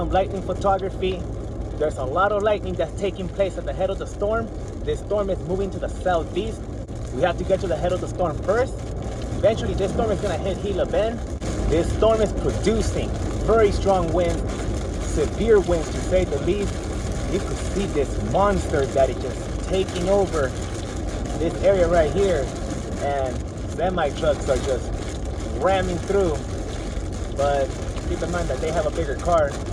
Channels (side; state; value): both; identical; correlation 1.00